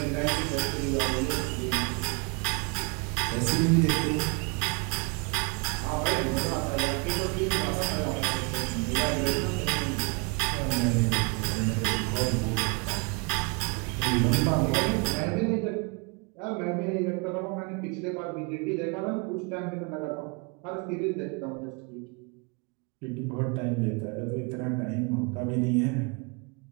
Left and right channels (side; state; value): left; quieter; 30.9 dB